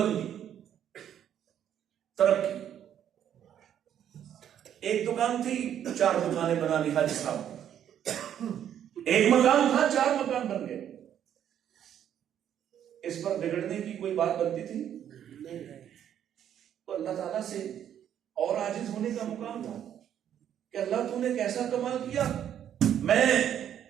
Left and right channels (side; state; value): left; quieter; 9.9 dB